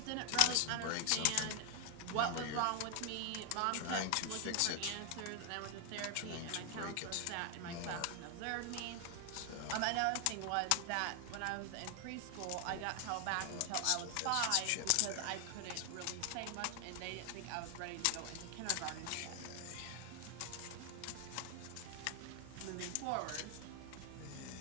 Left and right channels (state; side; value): different; both; correlation 0.00